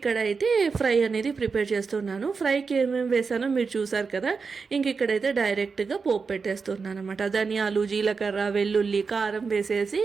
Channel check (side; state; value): left; quieter; 5.0 dB